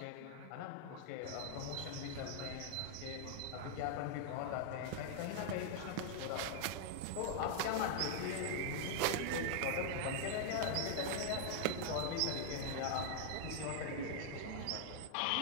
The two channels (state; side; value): different; both; correlation -0.01